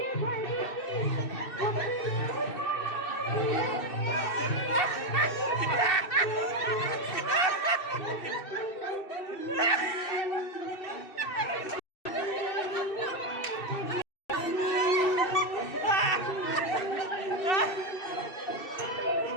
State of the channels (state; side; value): late; right; 2.6 ms